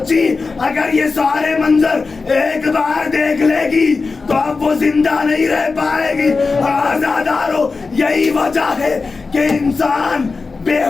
اگر یہ سارے منظر ایک بار دیکھ لے گی تو اب وہ زندہ نہیں رہ پائے گی۔ آزادارو، یہی وجہ ہے کہ انسان بے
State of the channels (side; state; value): right; quieter; 4.2 dB